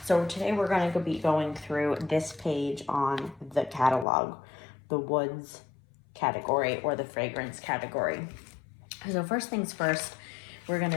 So today we're going to be going through this page on the catalog, the woods category or the fragrance category. So first things first, we're going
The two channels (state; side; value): drops out; right; at 4.0 s